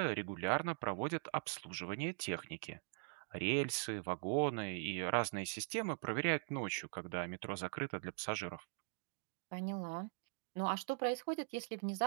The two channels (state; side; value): silent; left; digital silence